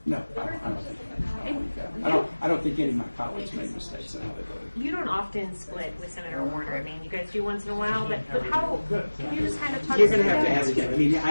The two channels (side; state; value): both; inverted; correlation -1.00